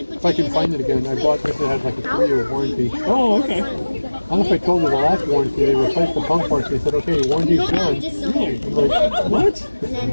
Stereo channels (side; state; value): both; inverted; correlation -1.00